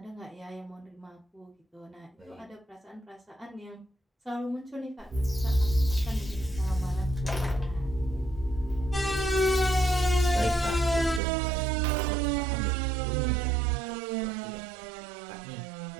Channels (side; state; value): left; drops out; at 11.2 s